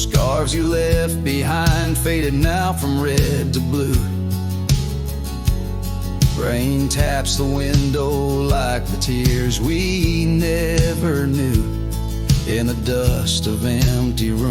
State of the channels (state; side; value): identical; both; correlation 1.00